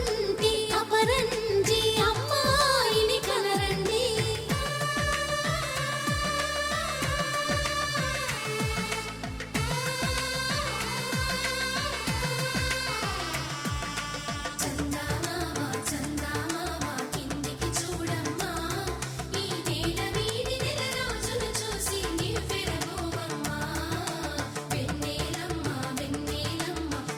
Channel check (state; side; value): identical; both; correlation 1.00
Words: అపరంజి అమ్మాయిని కనరండి